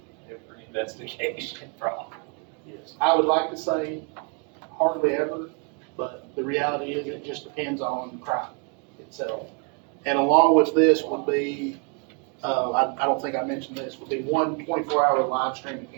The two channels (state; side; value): quieter; left; 36.3 dB